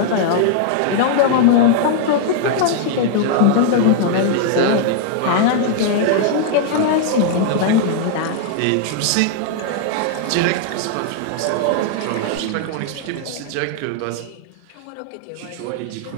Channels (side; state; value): both; different; correlation -0.01